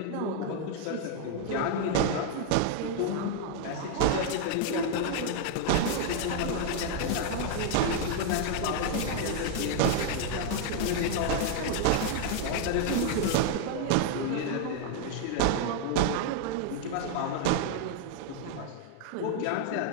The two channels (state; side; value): different; both; correlation 0.00